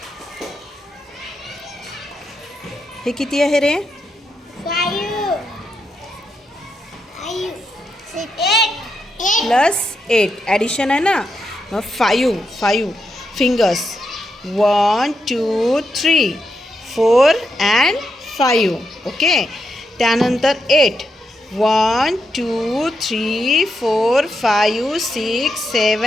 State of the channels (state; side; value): normal; both; correlation 0.84